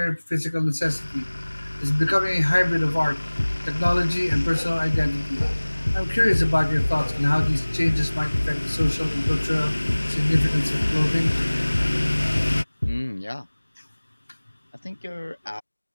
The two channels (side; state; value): both; inverted; correlation -1.00